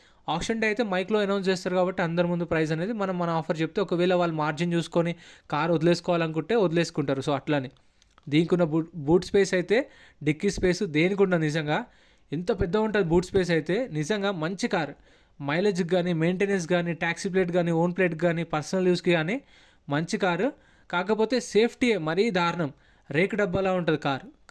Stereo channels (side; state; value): both; identical; correlation 1.00